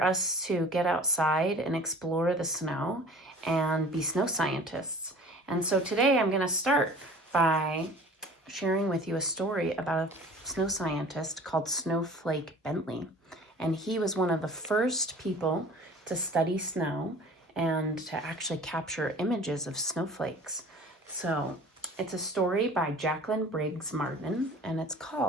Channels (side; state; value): both; normal; correlation 0.45